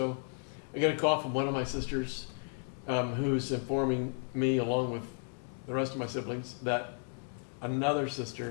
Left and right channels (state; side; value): silent; right; 55 dB below the other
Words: I get a call from one of my sisters who's informing me, along with the rest of my siblings, that another